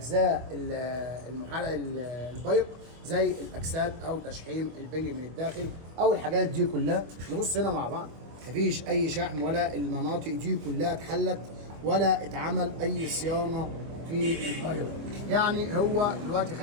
المحرك البايق زي الاكسات او تشحيم البنج من الداخل او الحاجات دي كلها. نبص هنا مع بعض، مفيش اي شحم ولا المناطق دي كلها اتحلت ولا اتعمل اي صيانه في البايق. يعني هو دلوقتي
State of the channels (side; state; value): left; late; 25 ms